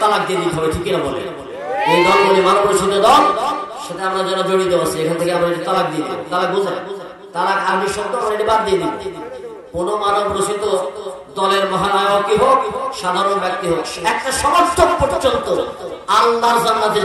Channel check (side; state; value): both; identical; correlation 1.00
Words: তালাক দিয়ে দিতে হবে, ঠিক কিনা বলে? এই দলগুলি মানব রচিত দল, সাথে আমরা যারা জড়িত আছি, এখান থেকে আমরা তালাক দিয়ে দিই। তালাক বোঝায়? তালাক আরবি শব্দ, আমরা এটা বাদ দিয়ে দিই। কোন মানব রচিত দলের মহানায়কই হোক, সাধারণ ব্যক্তি হোক, একটা সমর্থক পর্যন্ত আল্লাহর জান্নাতে